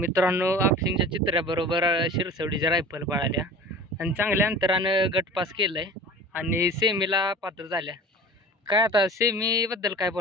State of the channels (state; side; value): normal; both; correlation 0.39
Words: आपशिंगच्या चित्र्याबरोबर शिरसवडीच्या रायफल पळाल्या आणि चांगल्या अंतरानं गटपास केलंय आणि सेमीला पात्र झाल्या. काय आता सेमीबद्दल काय